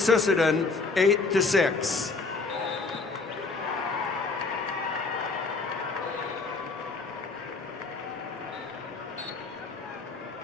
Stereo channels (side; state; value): right; quieter; 4.1 dB